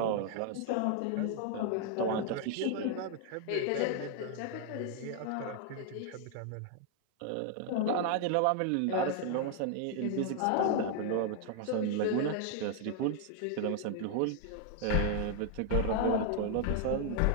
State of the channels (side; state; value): both; different; correlation 0.00